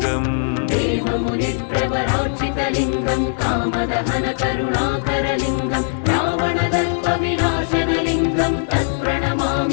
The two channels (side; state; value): right; silent; digital silence